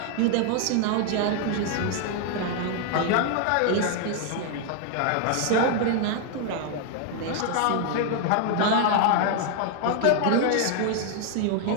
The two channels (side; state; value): both; different; correlation 0.00